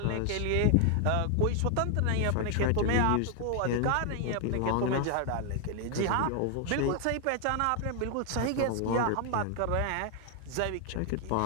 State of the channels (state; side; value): different; both; correlation 0.00